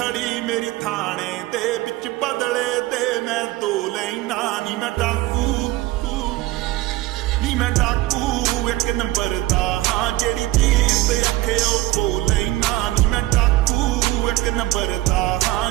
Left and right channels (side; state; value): left; quieter; 17.3 dB